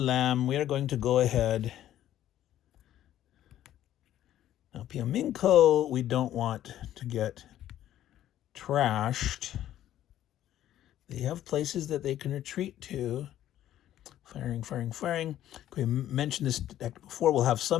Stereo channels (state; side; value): quieter; right; 12.3 dB